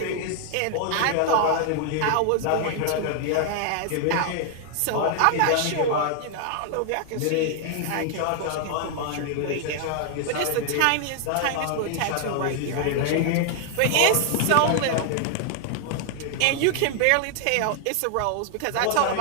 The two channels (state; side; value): different; both; correlation 0.00